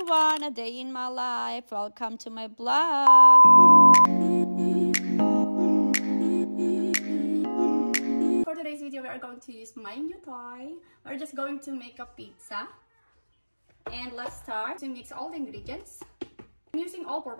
a day in my life. Welcome to my blog. For today's video, we are going to use my new toy. We're just going to make a pizza. And let's start to mix all the ingredients. I'm using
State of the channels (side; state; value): both; inverted; correlation -1.00